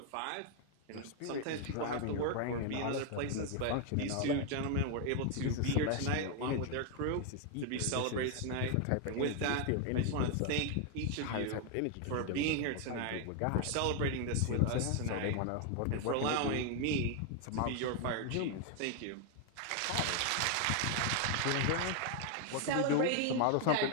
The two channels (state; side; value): different; both; correlation 0.01